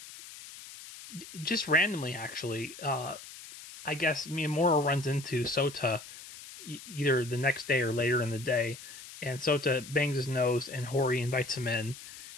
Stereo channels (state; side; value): noise; left; hiss, 15 dB below the sound